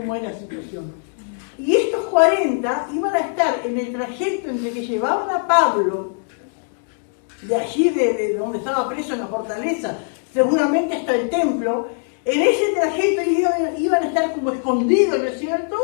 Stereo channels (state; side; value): silent; right; 62 dB below the other